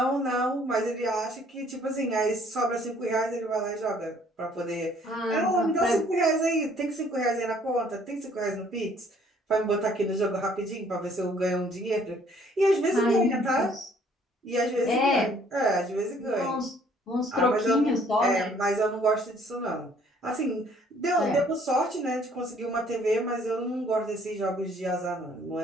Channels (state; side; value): normal; both; correlation 0.60